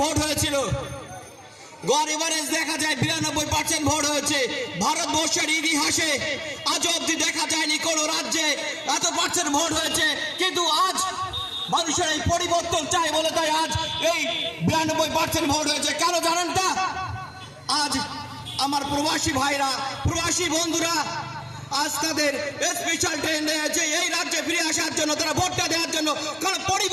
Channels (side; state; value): both; identical; correlation 1.00